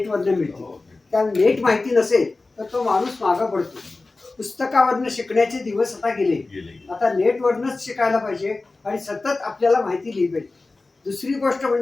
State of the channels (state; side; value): quieter; right; 3.4 dB